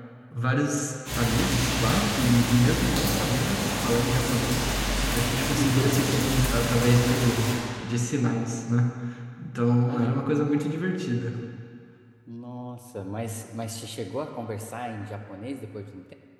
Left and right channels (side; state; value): both; identical; correlation 1.00